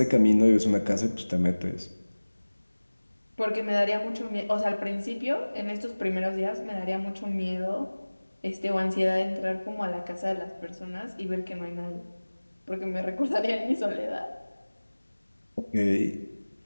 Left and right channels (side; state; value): both; inverted; correlation -1.00